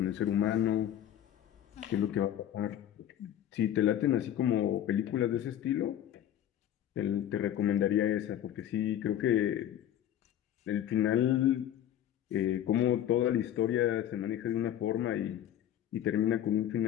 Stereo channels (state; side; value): quieter; right; 11.1 dB